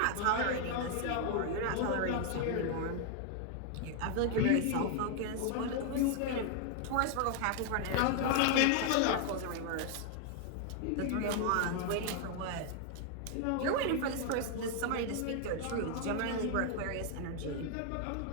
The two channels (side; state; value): both; different; correlation 0.00